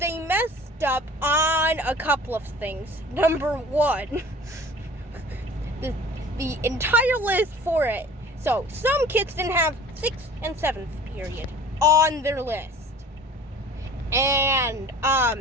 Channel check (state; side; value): normal; both; correlation 0.45